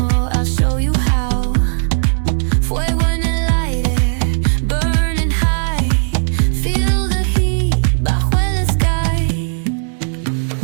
I'll show you how. Fuego en el aire, burning high. Feel the heat bajo el sky.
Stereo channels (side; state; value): left; silent; digital silence